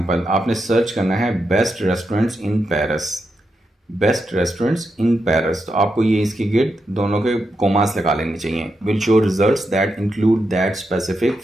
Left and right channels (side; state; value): both; normal; correlation 0.85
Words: आपने सर्च करना है best restaurants in Paris, best restaurants in Paris, तो आपको ये इसके गिर्द दोनों के कोमास लगा लेने चाहिए। Will show results that include that specific